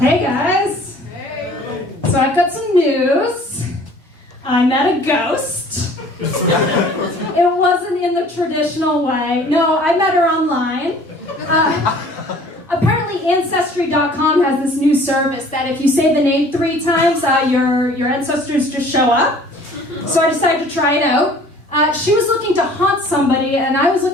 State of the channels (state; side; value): normal; both; correlation 0.51